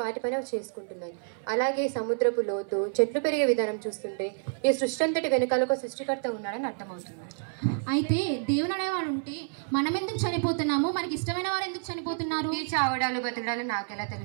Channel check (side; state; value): left; silent; 59 dB below the other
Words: వాటిపైన చేసుకుంటున్నాయి. అలాగే సముద్రపు లోతు, చెట్లు పెరిగే విధానం చూస్తుంటే ఈ సృష్టి అంతటి వెనకాల ఒక సృష్టికర్త ఉన్నాడని అర్థమవుతుంది. అయితే దేవుడు అనేవాడు ఉంటే మనం ఎందుకు చనిపోతున్నాము? మనకి ఇష్టమైన వారు ఎందుకు చనిపోతున్నారు? ఈ చావడాలు బతకడాలు నాకెలా